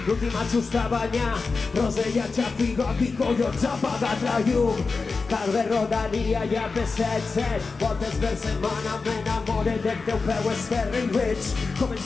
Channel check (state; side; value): quieter; right; 4.3 dB